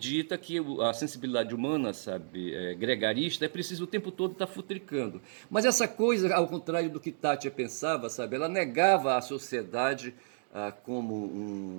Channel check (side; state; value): left; silent; digital silence